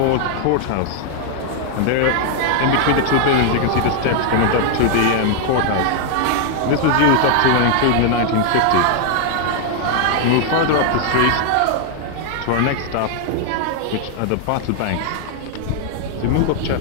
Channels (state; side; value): different; both; correlation 0.00